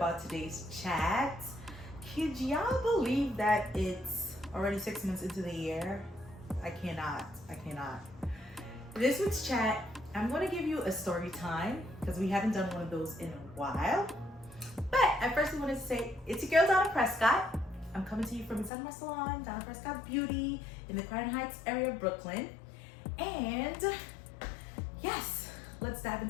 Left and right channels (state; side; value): drops out; right; at 18.7 s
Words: today's chat. Could y'all believe that it's already 6 months into the year? I cannot. This week's chat, I'm going to give you a story time because we haven't done one of those in a while. But I first want to say, it's your girl Donna Prescott. I'm coming to you from inside my salon, Donna Prescott Beauty, in the Crown Heights area of Brooklyn. And yes, let's dive